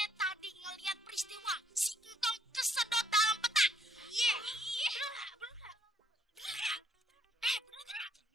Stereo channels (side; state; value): both; normal; correlation 0.67